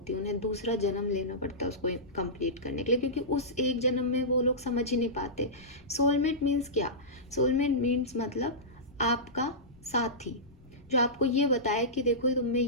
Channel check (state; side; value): noise; left; rumble, 27 dB below the sound